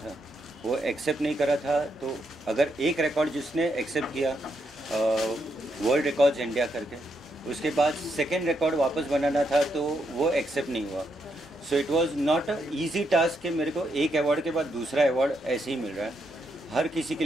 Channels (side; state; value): both; normal; correlation 0.79